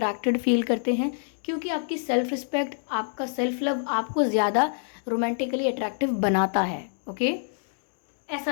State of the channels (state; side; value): silent; right; digital silence